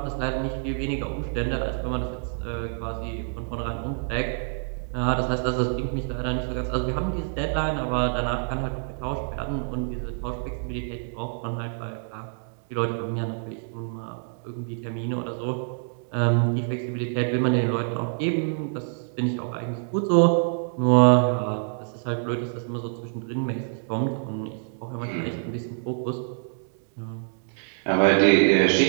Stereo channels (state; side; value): silent; left; digital silence